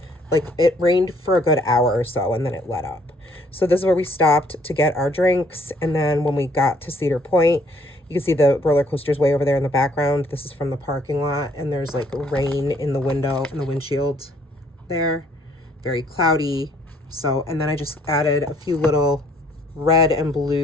like, it rained for a good hour or so and then it let up. So this is where we stopped to get our drinks. And then when we got to Cedar Point, you can see the roller coasters way over there in the background. This is from the parking lot, and there's like rain in the window, in the windshield there. Very cloudy. So, and then I just added a few little red and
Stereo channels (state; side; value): normal; both; correlation 0.63